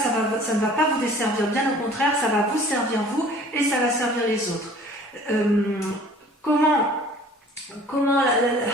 va pas vous desservir, bien au contraire, ça va vous servir vous, et ça va servir les autres. Comment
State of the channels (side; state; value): both; normal; correlation 0.49